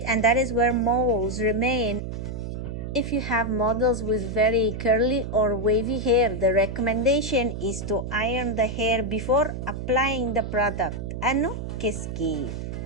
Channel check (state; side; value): noise; right; hum, 6 dB below the sound